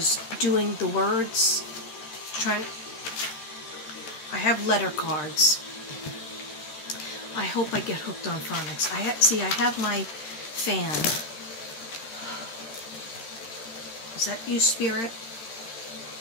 doing the words. I have letter cards. I hope I get hooked on phonics. I have my fan. Is that you, Spirit?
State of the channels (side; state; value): right; late; 13 ms